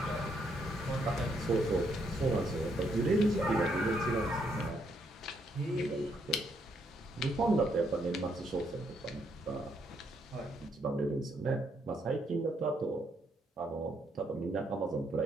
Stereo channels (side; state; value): both; normal; correlation 0.74